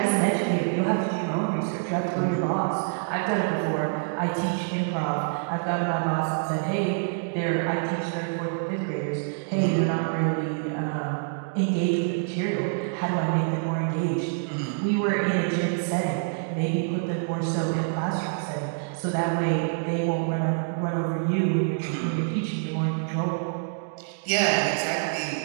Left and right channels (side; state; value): left; silent; digital silence